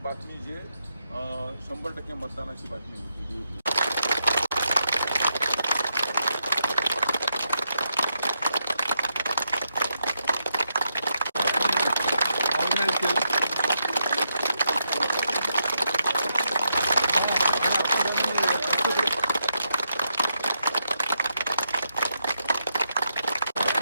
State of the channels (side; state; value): both; inverted; correlation -0.81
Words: बातमी जे 100% मतदानाची बातमी होती